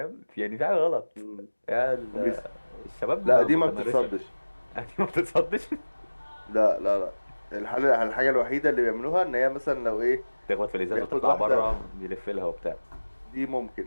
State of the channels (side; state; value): both; inverted; correlation -1.00